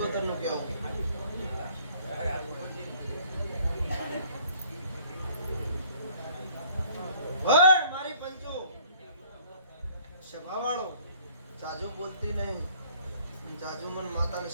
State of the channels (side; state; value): both; inverted; correlation -0.58